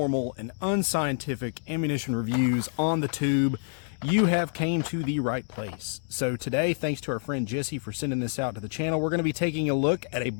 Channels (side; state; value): right; silent; digital silence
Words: and unscientific ammunition reviews on the tube, you have came to the right place. So today, thanks to our friend Jesse for sending this out to the channel, we're going to be taking a look at a